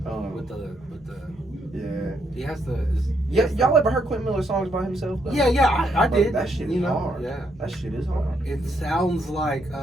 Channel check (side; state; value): both; normal; correlation 0.75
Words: with the Yeah. he has the Yeah, y'all ever heard Quentin Miller songs by himself? Though? yeah I Bro, did that shit you is know hard. yeah That shit is hard. it sounds like